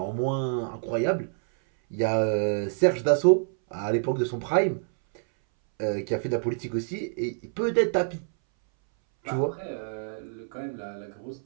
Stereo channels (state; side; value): silent; left; 60 dB below the other